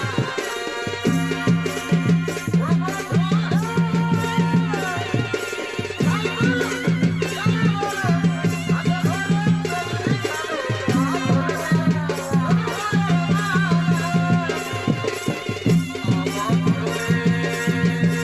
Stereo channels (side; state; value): left; noise; rumble, 29 dB below the sound